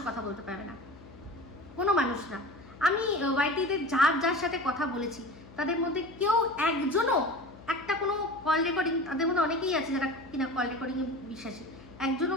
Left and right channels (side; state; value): left; noise; hum, 20 dB below the sound